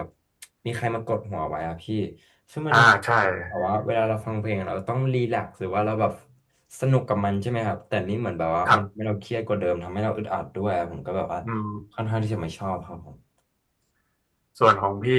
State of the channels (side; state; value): both; identical; correlation 1.00